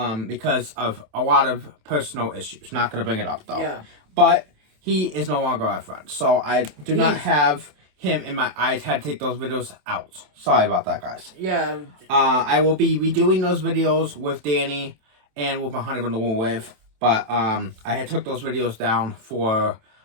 because of a lot of personal issues. Not gonna bring it up though. Yeah. But he is no longer our friend. So I do not have him in my eyes. Had to take those videos out. Sorry about that, guys. Yeah. I will be redoing those videos with Danny and with my Honey Bun the Wool Wave, but I had took those videos down for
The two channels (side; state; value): left; late; 27 ms